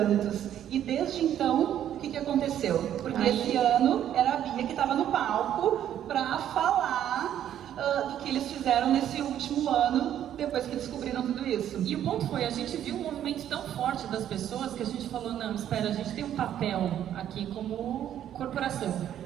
E desde então, o que aconteceu? Porque esse ano era a Bia que estava no palco para falar do que eles fizeram nesse último ano, depois que descobriram tudo isso. E o ponto foi, a gente viu um movimento tão forte das pessoas que a gente falou, não, espera, a gente tem um papel aqui como corporação,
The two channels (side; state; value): left; quieter; 10.7 dB